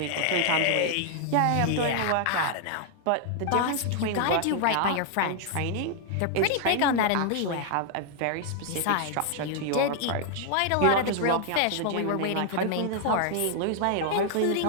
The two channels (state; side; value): different; both; correlation 0.00